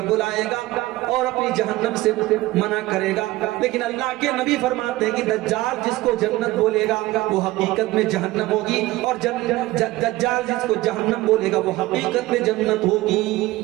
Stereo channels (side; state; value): left; quieter; 18.1 dB